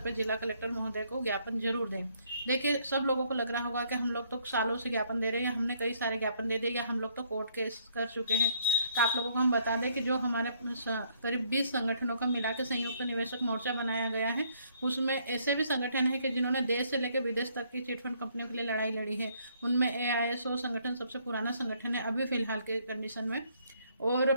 पर जिला कलेक्टर महोदय को ज्ञापन जरूर दें। देखिए, सब लोगों को लग रहा होगा कि हम लोग तो सालों से ज्ञापन दे रहे हैं, या हमने कई सारे ज्ञापन दे दिए, या हम लोग तो कोर्ट केस कर चुके हैं। तो आप लोगों को हम बता दें कि जो हमारे करीब 20 संगठनों का मिला के संयुक्त निवेशक मोर्चा बनाया गया है, उसमें ऐसे भी संगठन है कि जिन्होंने देश से लेकर विदेश तक की चिटफंड कंपनियों के लिए लड़ाई लड़ी है। उनमें AISO संगठन सबसे पुराना संगठन है अभी फिलहाल के कंडीशन में, और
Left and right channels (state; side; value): inverted; both; correlation -0.67